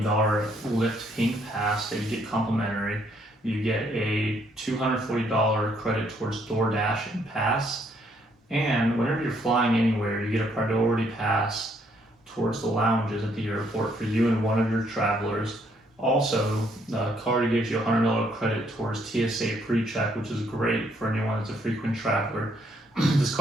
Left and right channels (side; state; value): both; normal; correlation 0.69